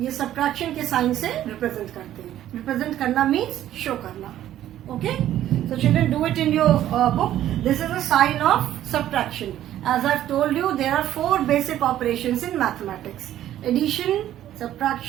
सब्ट्रैक्शन के साइन से रिप्रेजेंट करते हैं. रिप्रेजेंट करना मीन्स शो करना. Okay, so children do it in your book. This is a sign of subtraction. As I told you there are 4 basic operations in mathematics: addition,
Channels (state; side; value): quieter; left; 12.4 dB